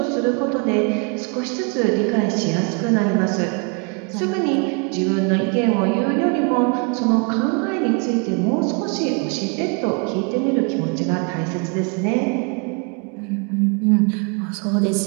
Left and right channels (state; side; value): quieter; left; 34.8 dB